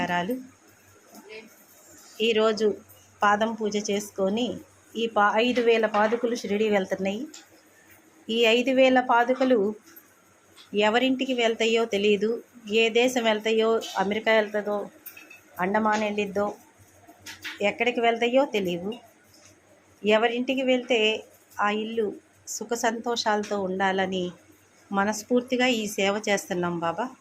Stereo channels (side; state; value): both; identical; correlation 1.00